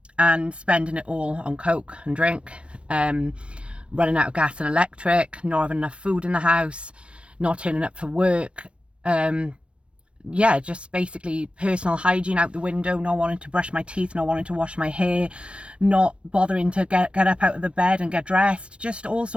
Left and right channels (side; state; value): left; late; 0.060 ms